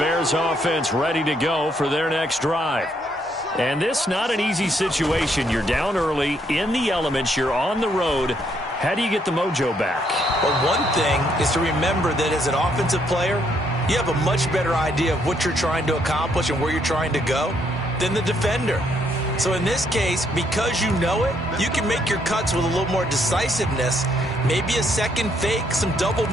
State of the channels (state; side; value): normal; both; correlation 0.72